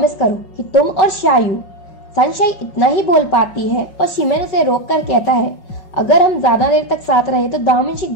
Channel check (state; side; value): late; right; 5.5 ms